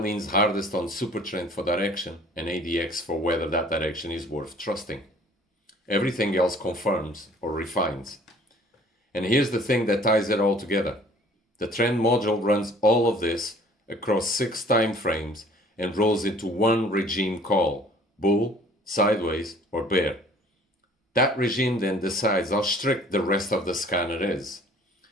hardest on SuperTrend for direction and ADX for whether that direction is worth trusting. Everything else confirms or refines. And here's the thing that ties it all together. The trend module runs all of this across 6 time frames and rolls into one regime call, bull, sideways, or bear. That regime then decides how strict the rest of the scanner is.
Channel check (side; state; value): both; normal; correlation 0.53